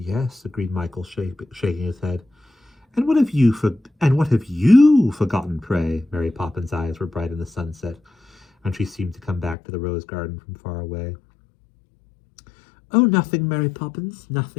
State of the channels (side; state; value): right; drops out; at 9.6 s